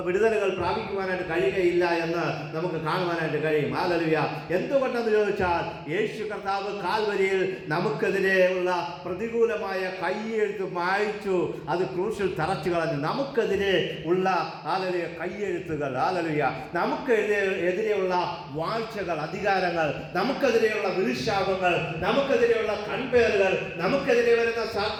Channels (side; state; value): both; identical; correlation 1.00